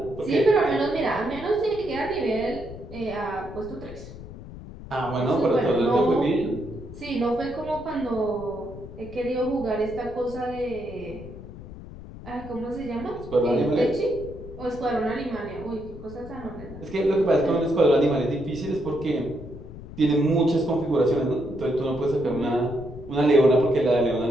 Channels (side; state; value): left; noise; rumble, 14 dB below the sound